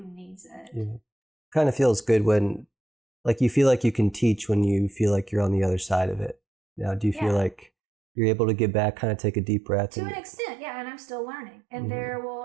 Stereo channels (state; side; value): drops out; left; at 7.7 s